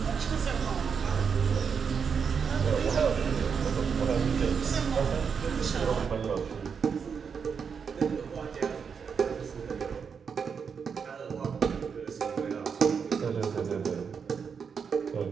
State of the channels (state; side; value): quieter; left; 6.3 dB